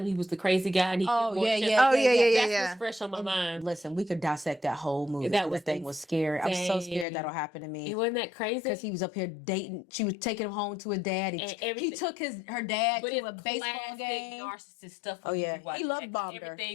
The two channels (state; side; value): drops out; right; at 7.1 s